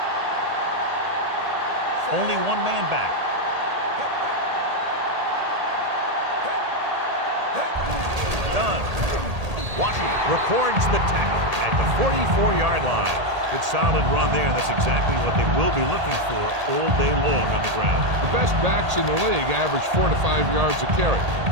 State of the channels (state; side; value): late; left; 1.8 ms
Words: Only one man back. Done. Washington records the tackle at the 44-yard line. Good solid run there, and that's exactly what they will be looking for all day long on the ground. The best backs in the league average 4 to 5 yards a carry.